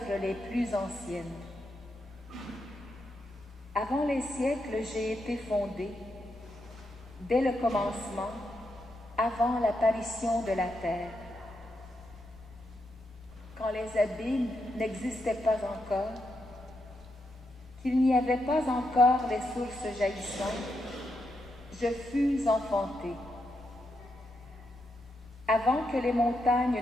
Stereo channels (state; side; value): normal; both; correlation 0.82